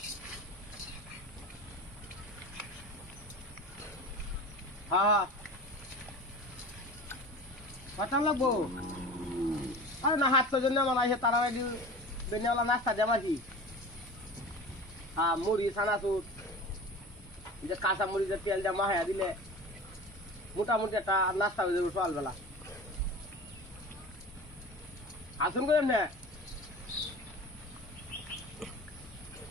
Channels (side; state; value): both; normal; correlation 0.35